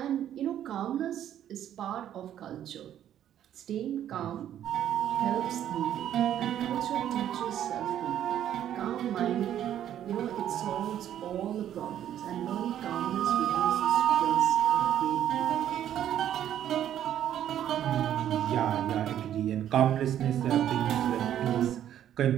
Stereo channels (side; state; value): left; quieter; 10.9 dB